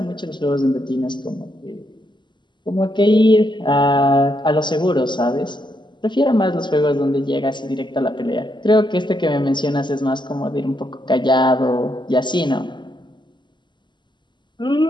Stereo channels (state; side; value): late; right; 0.22 ms